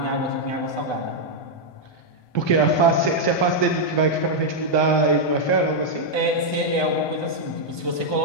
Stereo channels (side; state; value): right; late; 1.2 ms